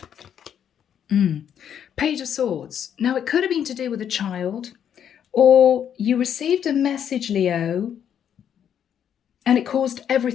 Page of Swords. Now, it could have been to do with a child, or you received a message, Leo, and it caused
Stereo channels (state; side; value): quieter; right; 9.0 dB